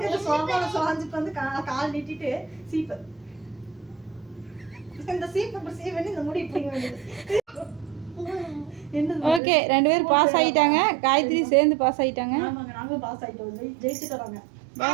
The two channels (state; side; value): drops out; left; at 9.4 s